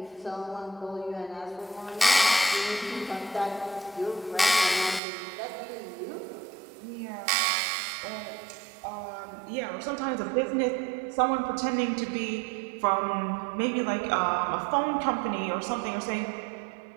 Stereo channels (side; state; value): left; drops out; at 5.0 s